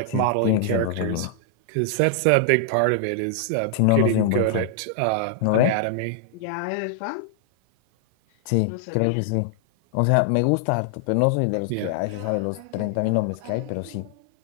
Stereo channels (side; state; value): both; different; correlation -0.01